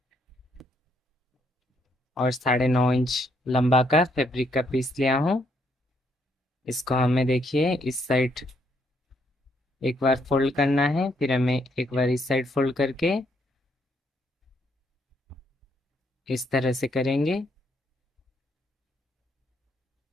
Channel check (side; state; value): both; normal; correlation 0.72